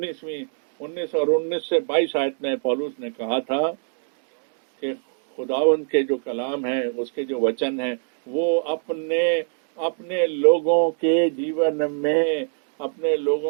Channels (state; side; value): silent; left; digital silence